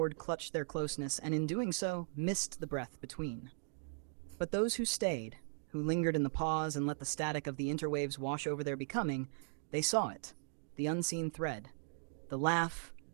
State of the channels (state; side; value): silent; left; digital silence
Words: clutched their closeness, and in doing so, missed the breath between. But those who stayed, who lingered in the pause and let the static of the interwaves wash over their becoming, they saw it, the unseen thread, the laugh